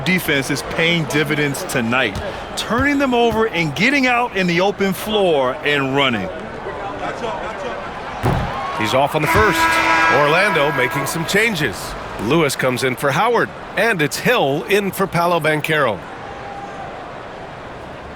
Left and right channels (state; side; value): identical; both; correlation 1.00